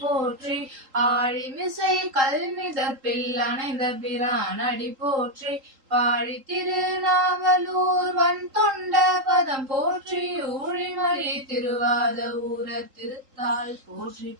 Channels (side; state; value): left; late; 3.8 ms